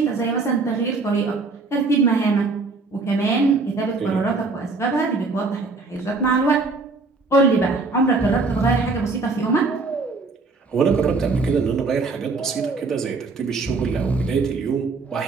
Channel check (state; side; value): quieter; left; 3.9 dB